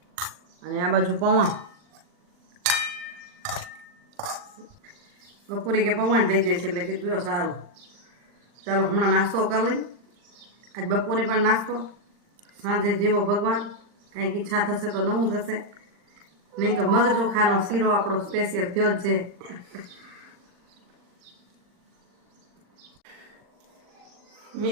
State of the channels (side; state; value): left; late; 39 ms